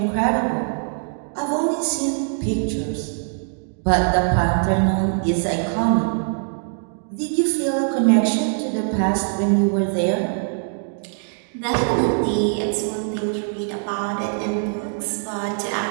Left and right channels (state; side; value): silent; left; digital silence